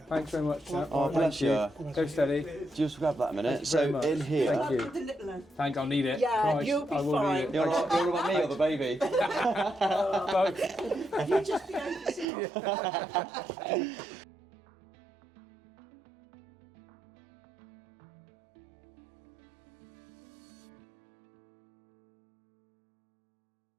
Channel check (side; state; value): left; drops out; at 12.2 s